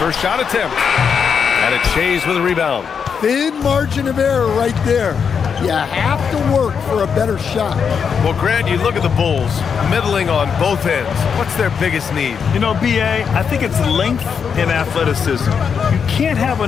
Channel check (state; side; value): quieter; right; 6.6 dB